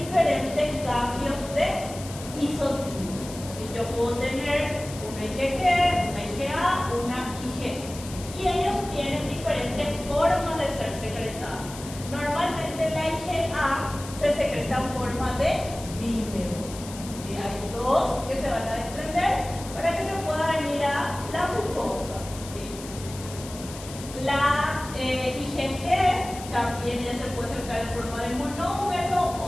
cambios de isotipos. ¿Sí? Yo puedo tener una IgG, una IgA, una IG. Y ellos tienen diferentes formas de ser secretados. Normalmente la IgA se secreta en forma de dímero. ¿Sí? Hay dos que se van a desprender para que se pueda venir a la glucosa. ¿Sí? La se puede presentar en forma de monómero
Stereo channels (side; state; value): left; noise; hiss, 14 dB below the sound